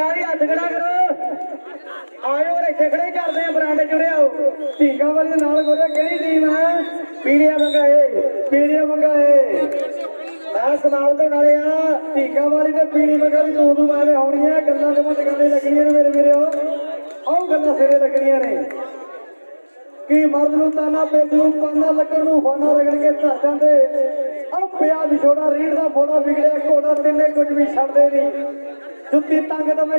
ਵਾਲੀ ਹੱਥ ਖੜਾ ਕਰੋ ਆਇਓ ਇੱਥੇ ਖੜੇ ਕਰਦੇ ਆ ਬਰਾਂਡੇ ਜੁੜੇ ਆਓ ਢੀਂਗਾ ਵਾਲੀ ਦੇ ਨਾਲ ਗੋਰੇ ਕਿਹੜੀ ਟੀਮ ਹੈ ਪੀਲੀਆਂ ਵੰਗਾ ਪੀਲੀਆਂ ਵੰਗਾ ਮੈਂ ਸਮਾਪਤ ਹੋਣ ਵਾਲੇ ਆ ਢੀਂਗਾ ਵਾਲੀ ਤੇ ਪੀਲੀ ਵੰਗਾ ਦੀ ਦੋ ਮਾਰੇ ਹੋਣੀਆਂ ਗੱਲਾਂ ਦੇ ਮੁੱਢ ਗੱਲੇ ਲੱਗਣੀਆਂ ਨੇ ਮੇਰੇ ਵੀਰੋ ਆਹ ਗੱਲਾਂ ਸਿਰੇ ਲੱਗਣੀਆਂ ਨੇ ਕੀ ਮਰਦ ਨੂੰ ਤਾਨਾ ਪੇਜ ਨੂੰ ਪਾਨਾ ਲੱਗਣ ਨੂੰ ਫਾਨਾ ਰਗੜ ਕੇ ਧਰ ਜਾਂਦੇ ਆਹ ਪਿਆ ਵਿਛੋੜਾ ਰੀੜ ਦਾ ਫੋੜਾ ਵਿਗੜਿਆ ਘੋੜਾ ਤਿੰਨੇ ਕੁਝ ਵੀ ਛੱਡਦੇ ਨਹੀਂ ਜੁੱਤੀ ਤੰਗ ਦਮੇ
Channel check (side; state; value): both; inverted; correlation -1.00